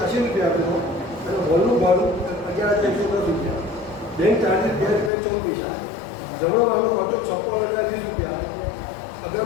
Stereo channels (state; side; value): drops out; right; at 5.1 s